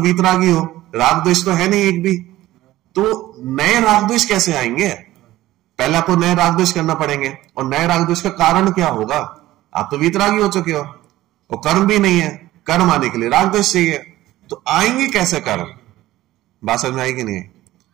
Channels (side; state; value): left; quieter; 15.8 dB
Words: हो, राग द्वेष तो है नहीं एक भी, तो नए राग द्वेष कैसे आएंगे? पहले आपको नए राग द्वेष करना पड़ेंगे, और नए राग द्वेष का कारण क्या होगा? आप तो वीतरागी हो चुके हो, और कर्म भी नहीं है, कर्म आने के लिए राग द्वेष चाहिए, तो आएंगे कैसे कर्म? बात समझ में आई कि नहीं?